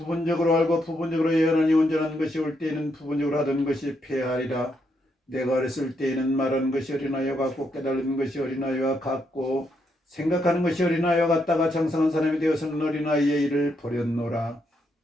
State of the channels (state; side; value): normal; both; correlation 0.78